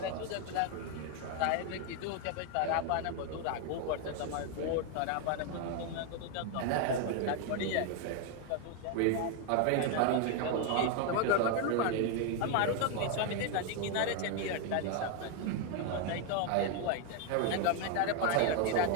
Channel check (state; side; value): different; both; correlation 0.01